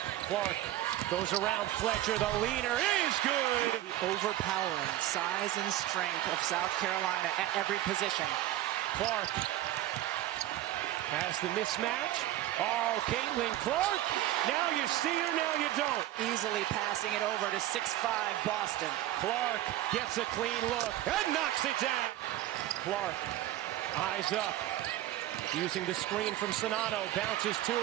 Clark goes around Fletcher. The leaner is good. Overpowering size and strength of South Carolina at every position. Clark has the mismatch. Oh, Caitlin Clark. Now you see her, now you don't. Easily passing it over to 6'5" Boston. Clark gets a clean look and knocks it down. Clark, eyes up. Using the screen from Sonato. Bounces to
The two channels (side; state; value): left; quieter; 14.2 dB